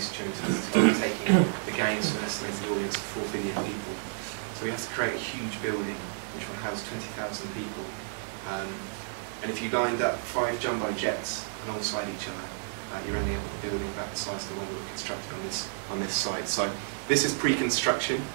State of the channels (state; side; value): silent; left; 57 dB below the other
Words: during 2012, taking the games to an estimated audience of 4 billion people. So we have to create a huge building which will house 20,000 people. And if you lined up 5 jumbo jets alongside each other, you're ending up with a building about the size of the one we were constructing on this site. So this is pre-construction